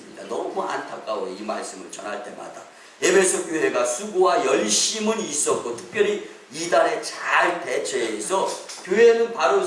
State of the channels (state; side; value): identical; both; correlation 1.00